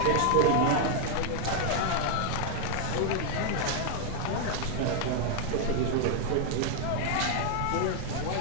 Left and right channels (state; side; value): different; both; correlation 0.00